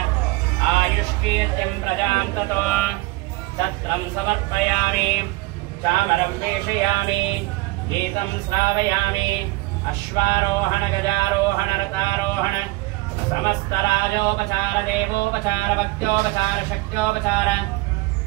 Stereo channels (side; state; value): left; quieter; 21.1 dB